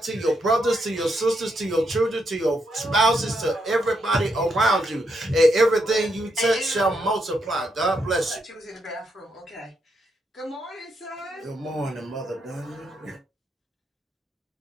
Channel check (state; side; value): normal; both; correlation 0.79